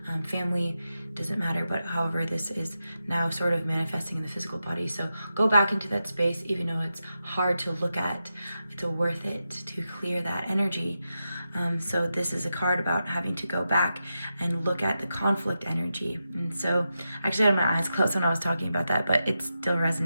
family, doesn't matter. But however, this is now sort of manifesting in the physical body. So go back into that space, even though it's hard to look at. It's worth it to clear that energy. So this is a card about having to go back and look at the conflict energy. And so actually I had my eyes closed when I was talking about that, but it's still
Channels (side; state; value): both; inverted; correlation -0.89